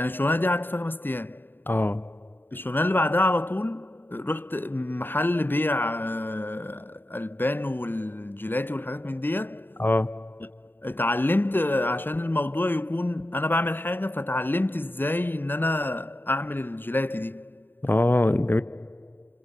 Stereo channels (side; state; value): right; late; 0.096 ms